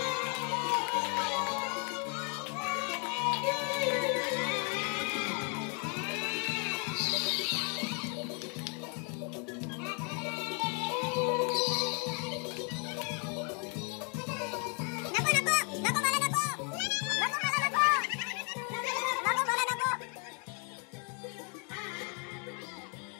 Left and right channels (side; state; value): right; quieter; 37.1 dB